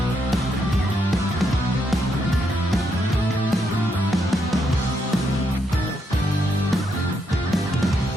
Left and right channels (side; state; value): both; normal; correlation 0.78